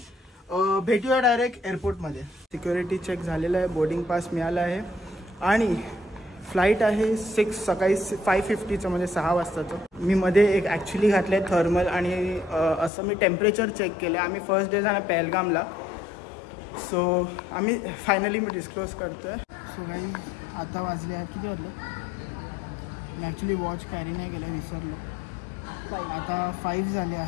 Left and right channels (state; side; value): drops out; right; at 12.9 s